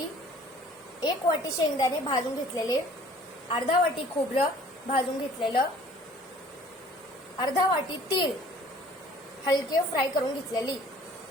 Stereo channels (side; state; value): both; normal; correlation 0.52